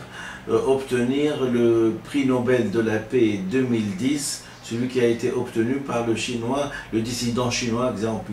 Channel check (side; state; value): both; identical; correlation 1.00